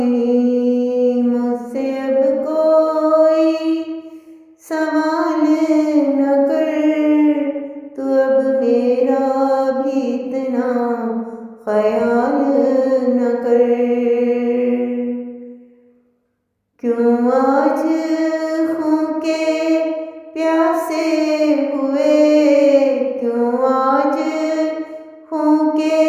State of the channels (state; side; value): identical; both; correlation 1.00